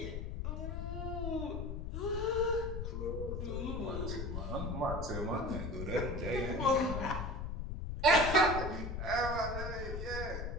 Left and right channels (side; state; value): left; noise; rumble, 4 dB below the sound